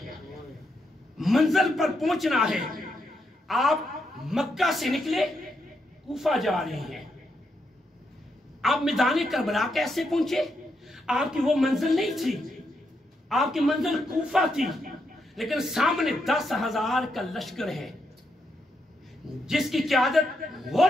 منزل پر پہنچنا ہے۔ آپ مکہ سے نکلے کوفہ جا رہے ہیں، آپ میدان کربلا کیسے پہنچے؟ آپ کی وہ منزل نہیں تھی، آپ کی منزل کوفہ تھی، لیکن سامنے 10,000 کا لشکر ہے جس کی قیادت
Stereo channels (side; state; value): both; normal; correlation 0.81